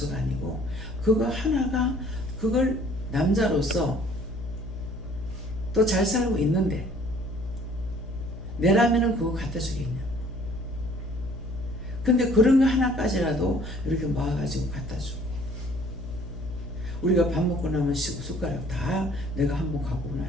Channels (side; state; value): left; noise; hum, 11 dB below the sound